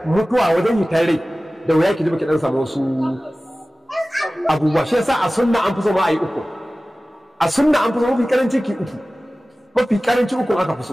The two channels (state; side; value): normal; both; correlation 0.97